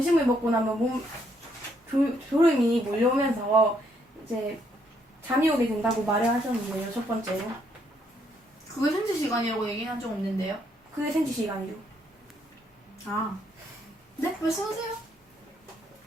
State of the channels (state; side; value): normal; both; correlation 0.72